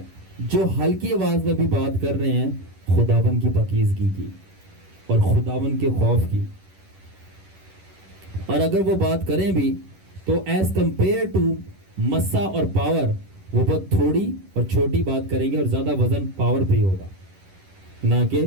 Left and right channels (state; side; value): late; left; 11 ms